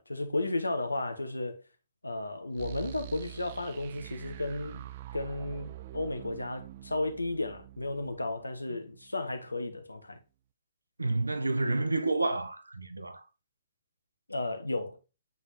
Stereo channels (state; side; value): inverted; both; correlation -0.88